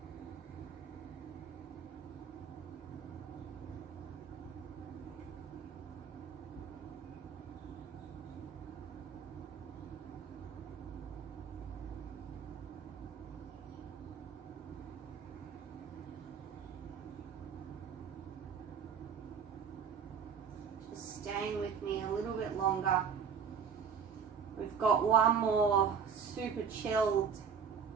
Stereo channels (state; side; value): quieter; left; 6.8 dB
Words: Staying with me a little bit longer. We've got one more super chilled,